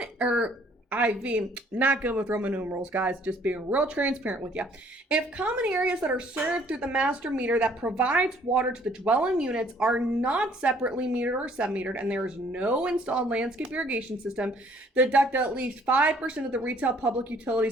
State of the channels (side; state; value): both; normal; correlation 0.60